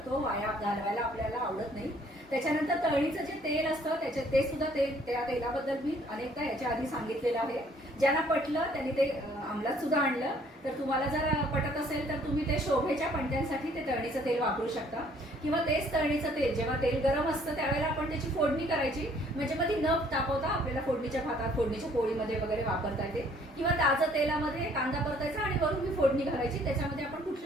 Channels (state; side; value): normal; both; correlation 0.60